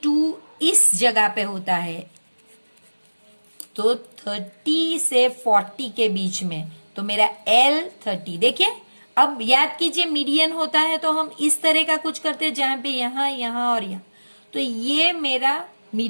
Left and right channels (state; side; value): inverted; both; correlation -1.00